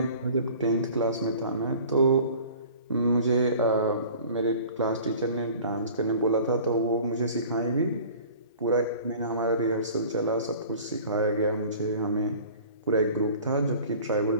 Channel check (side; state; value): both; inverted; correlation -0.45